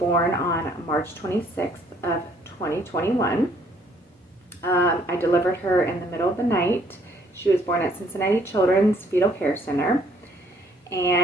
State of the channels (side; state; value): both; normal; correlation 0.64